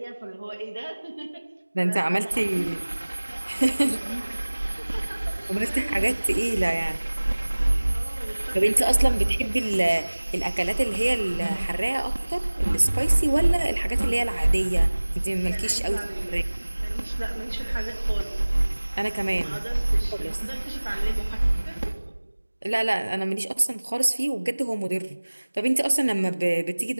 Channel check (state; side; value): inverted; both; correlation -1.00